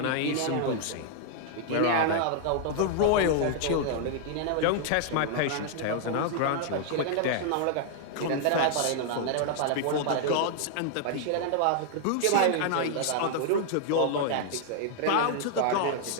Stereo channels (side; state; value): both; different; correlation 0.00